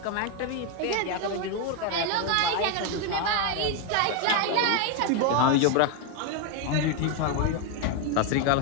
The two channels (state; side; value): different; both; correlation 0.01